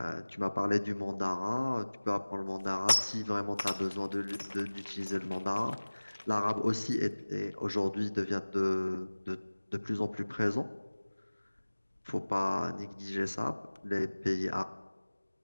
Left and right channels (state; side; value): inverted; both; correlation -1.00